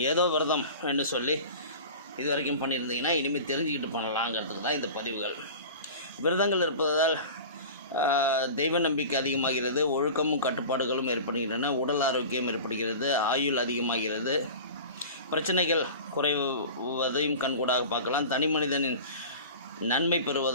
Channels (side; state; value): both; inverted; correlation -0.36